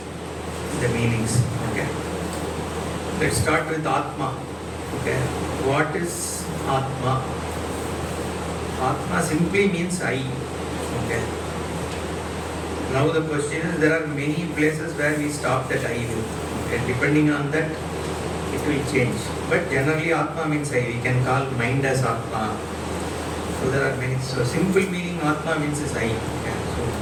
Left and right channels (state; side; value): identical; both; correlation 1.00